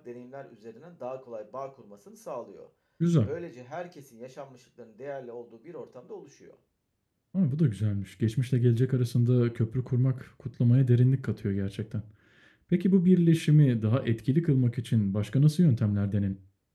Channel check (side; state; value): both; identical; correlation 1.00